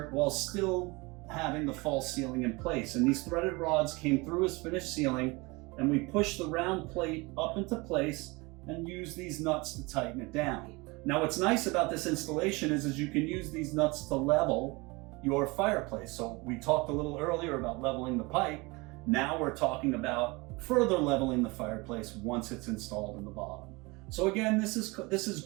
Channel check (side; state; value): left; quieter; 25.2 dB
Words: while still having the false ceiling in place. And these threaded rods came through his finished ceiling, and we pushed the round plate up into place and used these nuts to tighten it down. Now what's nice about this installation is you can use these nuts to level your fireplace. So we talked a little earlier about leveling the pipe. Now we're talking about further leveling the fireplace once it's installed in the bottom. So again, this is